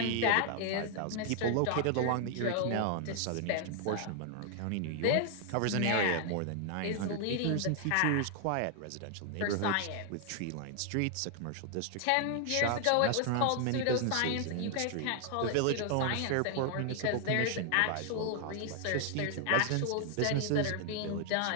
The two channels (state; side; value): different; both; correlation 0.00